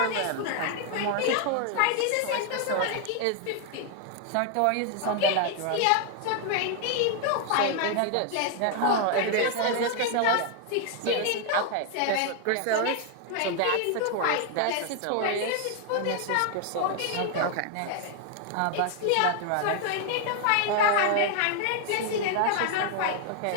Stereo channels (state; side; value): different; both; correlation 0.00